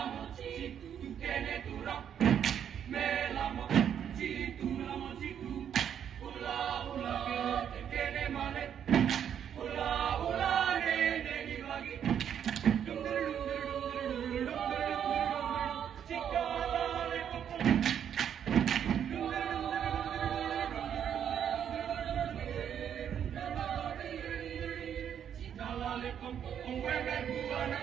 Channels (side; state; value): left; quieter; 8.9 dB